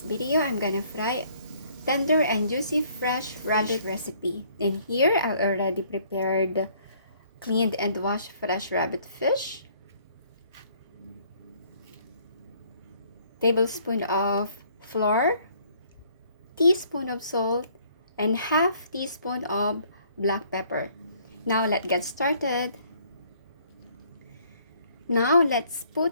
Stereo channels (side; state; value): both; inverted; correlation -0.62